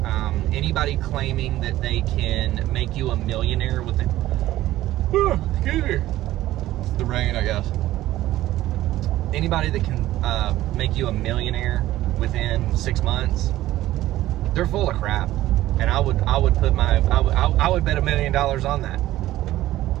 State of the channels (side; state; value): left; quieter; 15.1 dB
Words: anybody claiming that they can make you a millionaire within, excuse me, it's the rain, I guess. Anybody that can make you a millionaire within 6 months, they're full of crap. And I would bet $1 million on that.